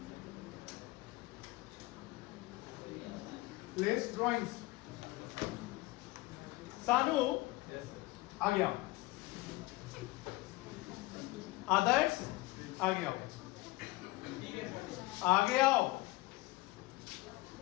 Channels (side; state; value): right; quieter; 20.7 dB